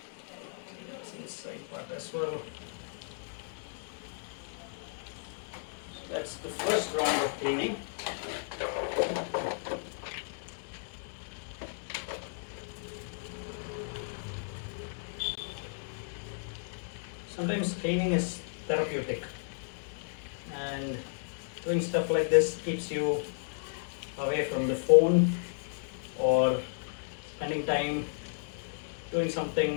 That's the inside part as well. So that's the first round of cleaning. Sometimes cleaning is therapeutic, and doing stuff like this keeps you away from the phone or spending time doing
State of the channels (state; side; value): silent; right; digital silence